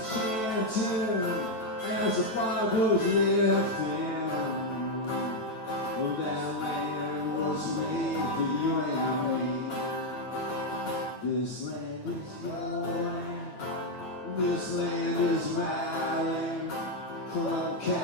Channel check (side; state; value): right; late; 9.1 ms